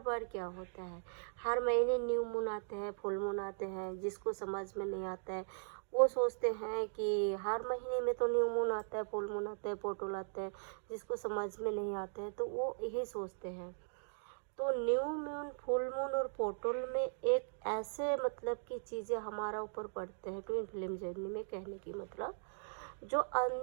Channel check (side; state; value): left; silent; digital silence